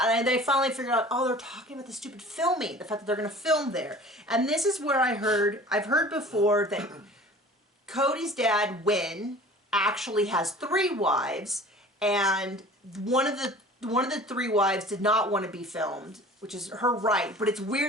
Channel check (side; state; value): both; normal; correlation 0.44